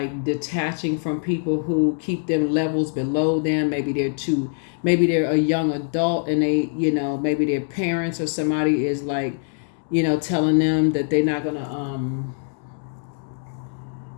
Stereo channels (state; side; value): silent; right; digital silence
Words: detaching from people who keep them levels below them. Maybe they're a young adult and they, maybe their parents or somebody is like, telling them that they're not gonna